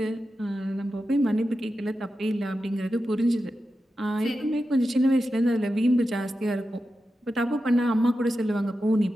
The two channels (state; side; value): normal; both; correlation 0.91